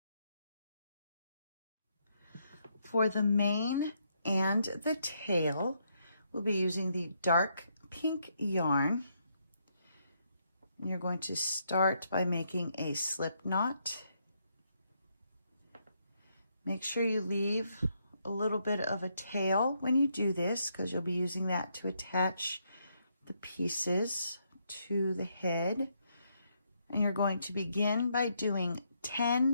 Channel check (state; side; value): inverted; both; correlation -0.76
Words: For the mane and the tail, we'll be using the dark pink yarn. You're going to start by making a slip knot. Make sure you leave a little bit of a tail when you do this, because you'll be using that to attach the pieces to the head. And you're going to begin by doing